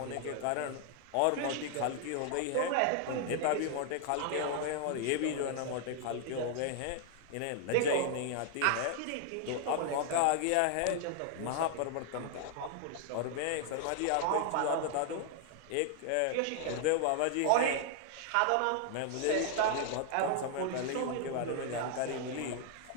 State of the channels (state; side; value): different; both; correlation 0.00